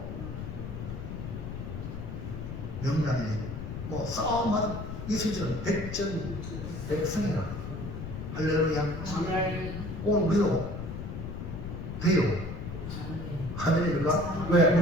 명량에 뭐 싸움하는 이수희는 백전백승이라 할렐루야. 오늘 우리도 돼요. 아멘입니까? 왜?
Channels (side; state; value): left; noise; rumble, 7 dB below the sound